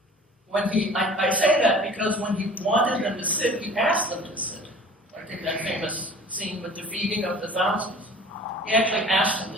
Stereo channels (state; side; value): normal; both; correlation 0.45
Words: I say that because when he wanted them to sit, he asked them to sit. I think that famous scene with the feeding of the thousands. He actually asked them